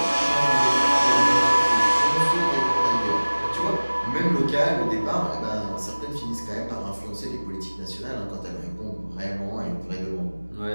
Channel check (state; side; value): inverted; both; correlation -1.00